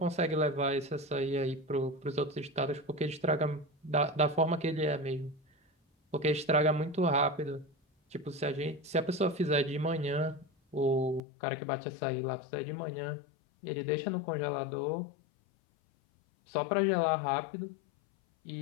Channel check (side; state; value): right; drops out; at 11.2 s